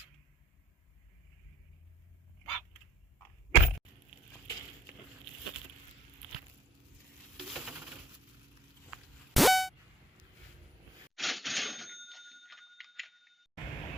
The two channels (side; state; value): both; normal; correlation 0.61